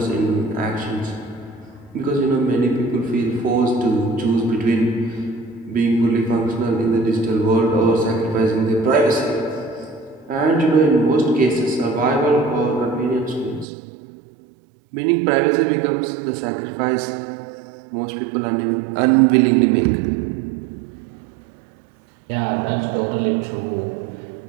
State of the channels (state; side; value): drops out; left; at 13.7 s